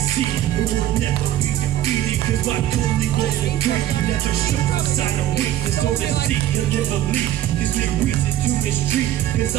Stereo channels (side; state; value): left; quieter; 12.9 dB